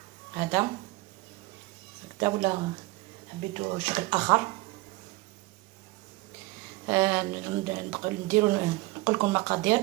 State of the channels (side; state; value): left; quieter; 21.5 dB